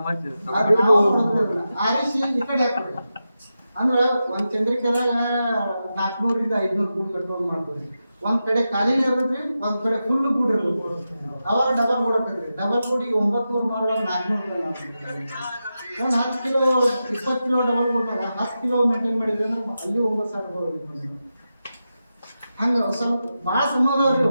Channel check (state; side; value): inverted; both; correlation -0.90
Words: ಆರಿಸಿ ಈ ಕಡೆ ಹಾಕ್ಬೇಕು. ಅಂದ್ರೆ ಒಂದ್ ಚಂದ್ರಿಕೆದಾಗ 400 500 ಗೂಡ್ ಕಟ್ಕೊಂಡು ಮಾಡ್ತೀವಿ. ಒಂದ್ ಕಡೆ ಖಾಲಿನೇ ಇರ್ತದ್ರಿ, ಒಂದ್ ಕಡೆ ಫುಲ್ ಗೂಡ್ ಇರ್ತದೆ. ಅವಾಗ ಡಬಲ್ ಗೂಡ್ ಹಾಕದ್ರಿ. ಡಬಲ್ ಗೂಡಿಗೆ 900 ಮಾರುವಾಗ 400 ಒಂದು 10 ಕಿಲೋ 20 ಕಿಲೋ ಡಬಲ್ ಗೂಡ್ 10 ಕಿಲೋ ಮೇಂಟೈನ್ ಮಾಡಿದ್ರೆ ಅಲ್ಲಿ 9,000 ಹಂಗ ಸ್ವಲ್ಪ ಬಾಳ ಸಮಾಧಾನ